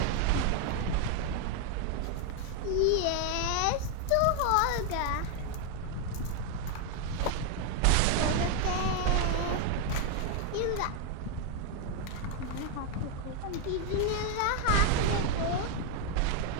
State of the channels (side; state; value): both; different; correlation 0.01